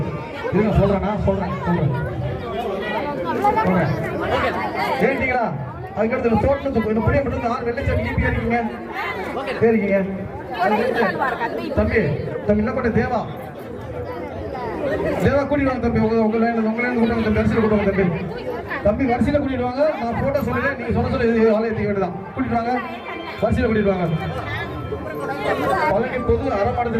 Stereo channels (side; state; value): both; identical; correlation 1.00